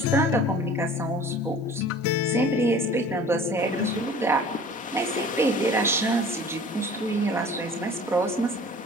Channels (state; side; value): normal; both; correlation 0.45